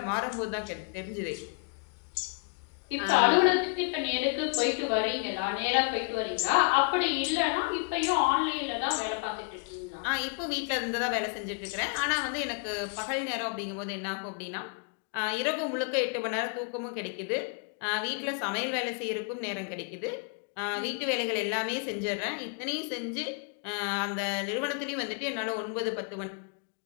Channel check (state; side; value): quieter; right; 34.7 dB